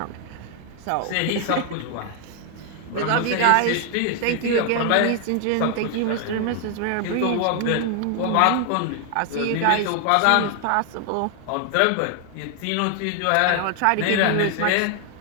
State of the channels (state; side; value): different; both; correlation 0.00